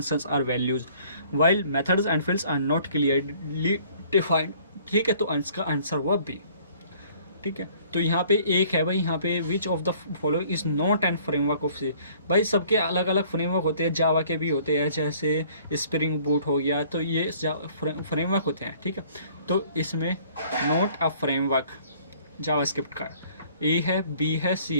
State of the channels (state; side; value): inverted; both; correlation -0.56